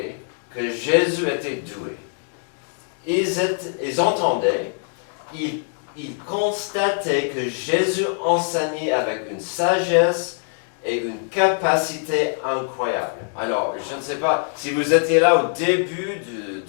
que Jésus était doué. Ils entendaient, ils constataient que Jésus enseignait avec une sagesse et une capacité incroyable. Alors, je ne sais pas, si vous étiez là au début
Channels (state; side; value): silent; right; 58 dB below the other